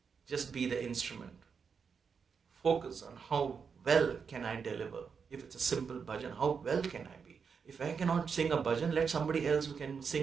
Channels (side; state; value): left; quieter; 6.0 dB